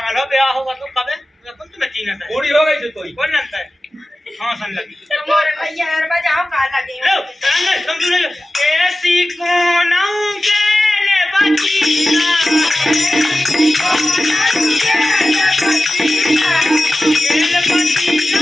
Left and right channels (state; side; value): normal; both; correlation 0.95